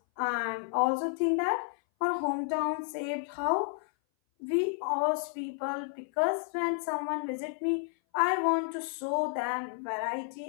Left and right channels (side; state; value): right; silent; 57 dB below the other